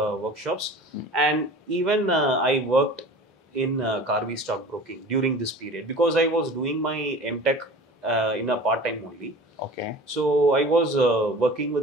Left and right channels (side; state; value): both; normal; correlation 0.40